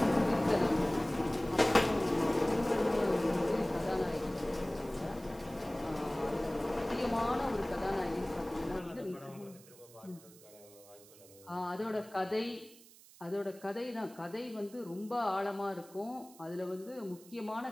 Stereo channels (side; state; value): right; noise; hiss, 22 dB below the sound